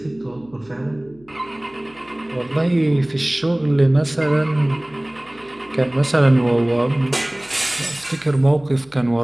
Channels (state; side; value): noise; left; hum, 28 dB below the sound